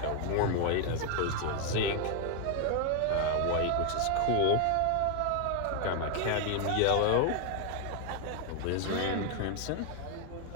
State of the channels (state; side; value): different; both; correlation 0.00